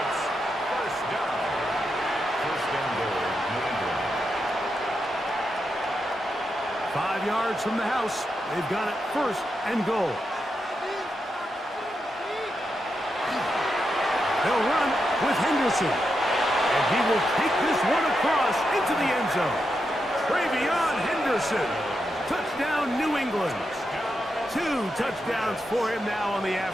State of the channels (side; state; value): both; normal; correlation 0.85